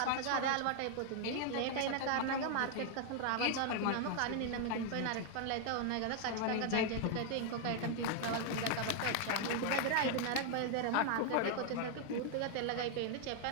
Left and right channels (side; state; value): both; different; correlation 0.00